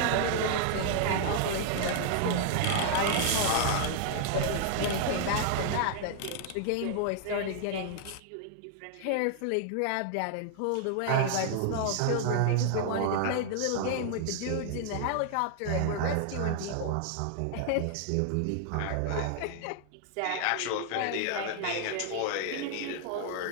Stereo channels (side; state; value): both; different; correlation 0.00